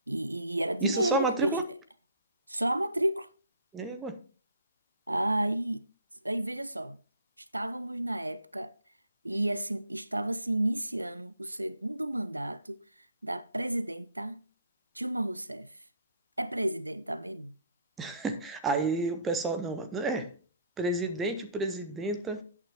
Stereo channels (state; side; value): inverted; both; correlation -0.56